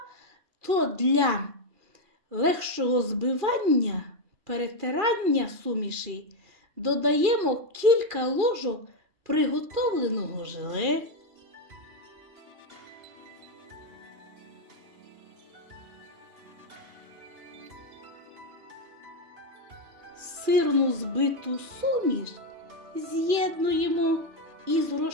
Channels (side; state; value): left; late; 2.4 ms